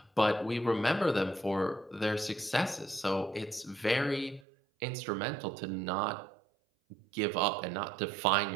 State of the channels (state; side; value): drops out; left; at 4.5 s